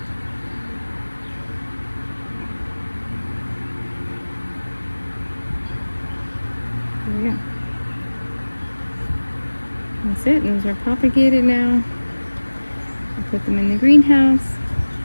There we go. That's it. Those are propagated now. I'll put them in the greenhouse.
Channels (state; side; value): inverted; both; correlation -1.00